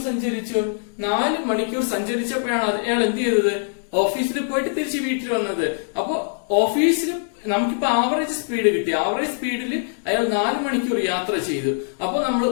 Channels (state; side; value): silent; right; digital silence